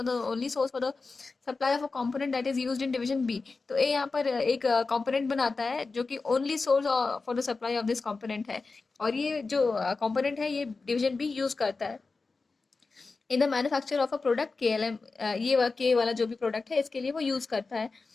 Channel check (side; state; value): right; quieter; 4.0 dB